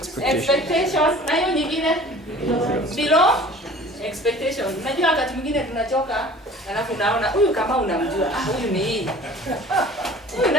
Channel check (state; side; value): normal; both; correlation 0.46